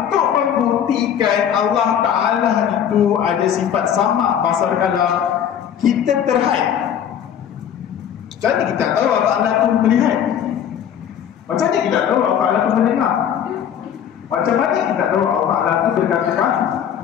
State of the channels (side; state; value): right; quieter; 9.1 dB